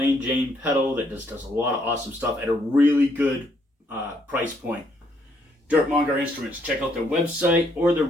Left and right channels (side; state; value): both; normal; correlation 0.71